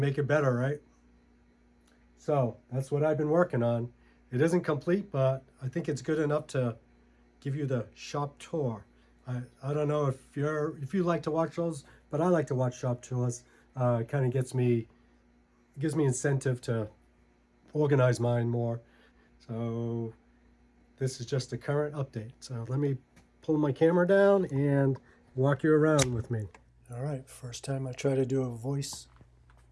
it better, right? So that's what I've been working on. It isn't complete, but I think it's good enough to give you the shop tour. I don't know if you like to watch those, but I like to watch shop tours. It kind of gives me incentive to organize mine more. So this is just a current update. So let me pull my camera down and walk you around with me. All right, first time I try to do a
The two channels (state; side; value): identical; both; correlation 1.00